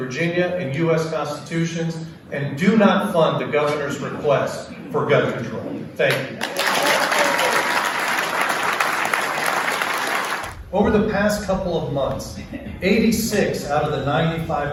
and U.S. constitutions, and do not fund the governor's request for gun control. Thank you. Over the past couple of months, 86 out of the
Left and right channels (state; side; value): identical; both; correlation 1.00